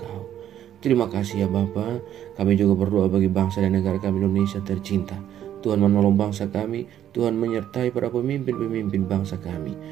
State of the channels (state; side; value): quieter; left; 10.9 dB